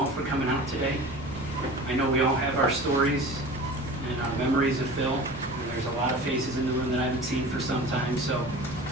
for coming out today. I know we all have our stories and our memories of Phil, and there's a lot of faces in the room that I haven't seen for some time, so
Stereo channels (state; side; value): noise; left; rumble, 22 dB below the sound